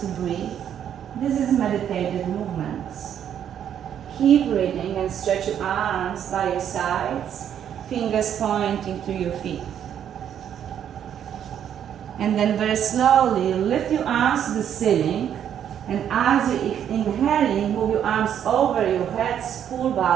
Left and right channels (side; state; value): left; quieter; 9.4 dB